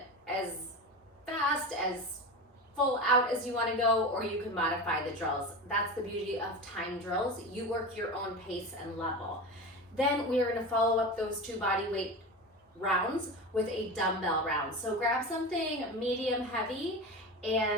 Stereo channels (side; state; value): both; normal; correlation 0.26